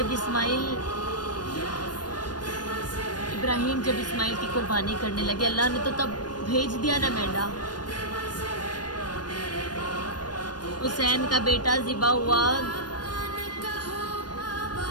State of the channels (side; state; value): right; late; 0.69 ms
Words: ابراہیم جب اسماعیل کی قربانی کرنے لگے، اللہ نے تو تب بھیج دیا نا مینڈا۔ حسین کا بیٹا ذبح ہوا،